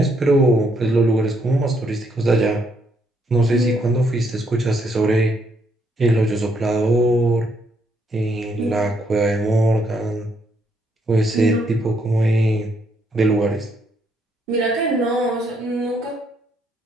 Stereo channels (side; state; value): both; normal; correlation 0.73